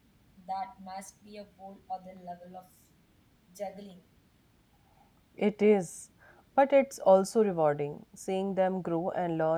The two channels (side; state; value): both; identical; correlation 1.00